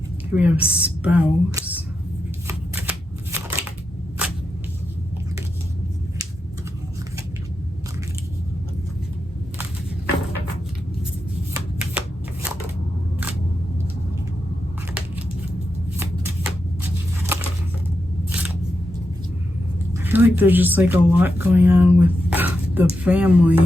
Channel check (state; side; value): normal; both; correlation 0.86